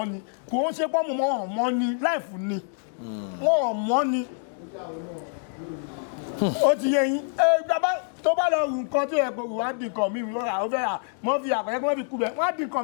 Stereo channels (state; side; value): silent; right; 61 dB below the other